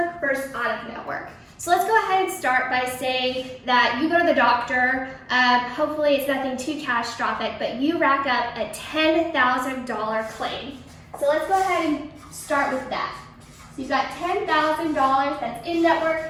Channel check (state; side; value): identical; both; correlation 1.00